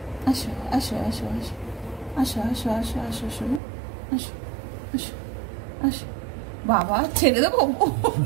আসো আসো আসো আসো আসো আসো আসো আসো শোনো, আসো আসো আসো। বাবা ছেড়ে দেবো?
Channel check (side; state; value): left; drops out; at 3.6 s